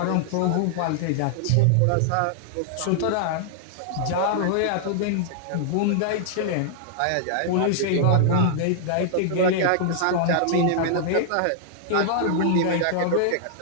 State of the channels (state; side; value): different; both; correlation -0.01